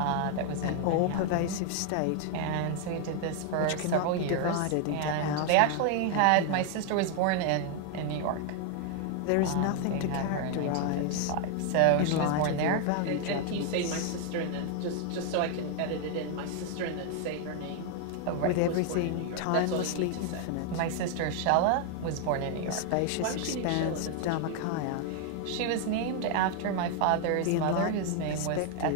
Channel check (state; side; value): different; both; correlation 0.00